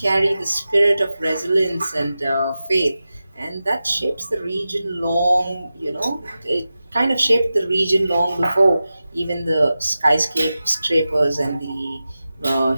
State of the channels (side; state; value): both; inverted; correlation -0.94